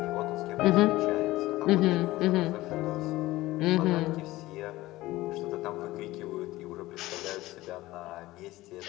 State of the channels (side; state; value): right; quieter; 17.8 dB